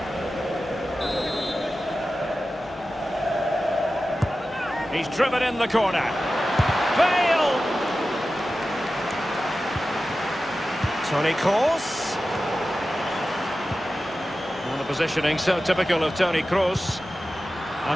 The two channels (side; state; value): both; normal; correlation 0.94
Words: He's driven in the corner. Bale! Toni Kroos. Well, the positioning so typical of Toni Kroos.